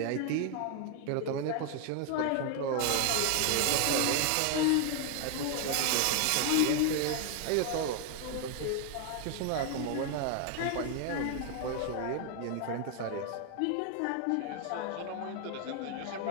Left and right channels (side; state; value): both; different; correlation 0.00